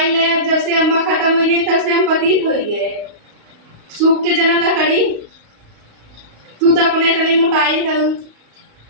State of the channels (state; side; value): late; left; 35 ms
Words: ले जब से अम्मा खत्म हुई तब से हम पतित हो गए सूख के जना लकड़ी तू तो अपने इतनी मोटाई है